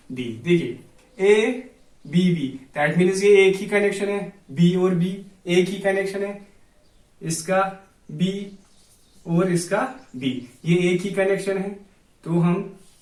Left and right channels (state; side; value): identical; both; correlation 1.00